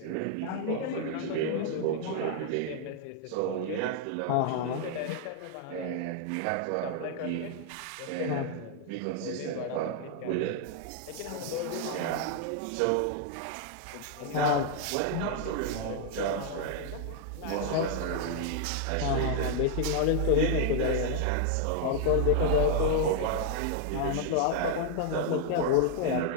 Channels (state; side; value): different; both; correlation 0.00